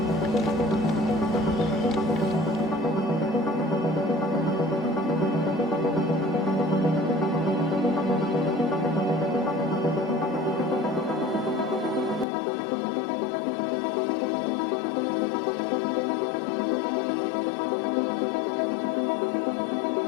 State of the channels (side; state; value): right; drops out; at 12.2 s